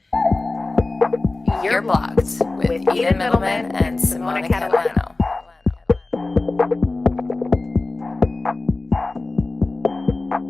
did. You're Blocked with Eden Middleman and Simona Catalano.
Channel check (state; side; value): quieter; right; 3.2 dB